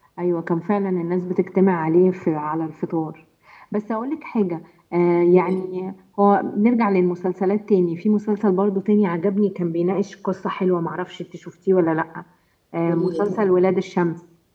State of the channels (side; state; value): both; identical; correlation 1.00